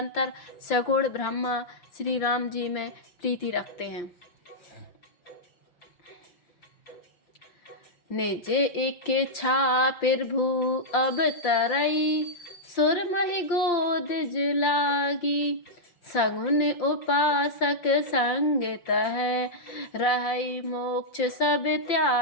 सगुण ब्रह्मा श्री राम जी में प्रीति रखते हैं। निज इच्छा प्रभु अब तरई, सुरमहि गोद लागी। सगुन उपासक संग तह, रहई मोक्ष सब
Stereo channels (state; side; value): late; right; 5.7 ms